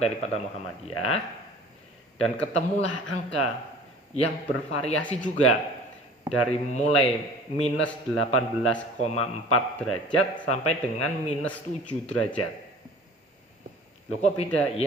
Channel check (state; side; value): normal; both; correlation 0.46